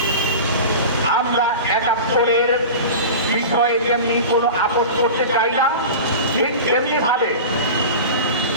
আমরা 71-এর বিষয়ে যেমনি কোনো আপোষ করতে চাই না, ঠিক তেমনি ভাবে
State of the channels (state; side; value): inverted; both; correlation -0.31